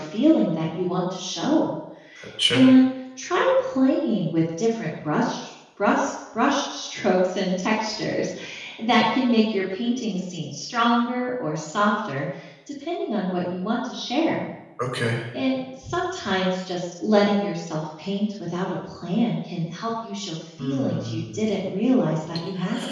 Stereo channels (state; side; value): identical; both; correlation 1.00